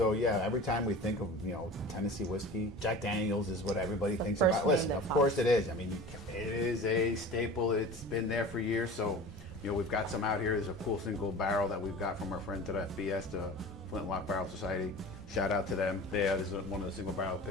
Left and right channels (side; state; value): both; normal; correlation 0.38